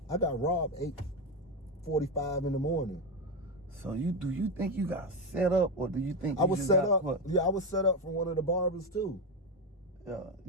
I got robbed 8:45 in the morning. So do you think you got set up, or do you think I was set up? What? Yeah, I was set up from one of the barbers too. Yeah,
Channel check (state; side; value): normal; both; correlation 0.11